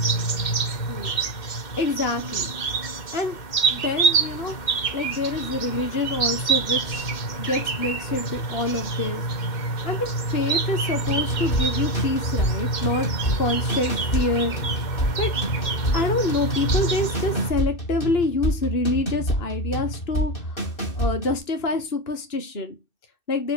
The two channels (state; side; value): late; right; 2.6 ms